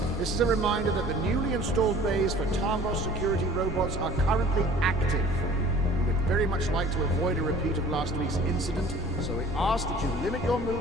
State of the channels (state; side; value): normal; both; correlation 0.48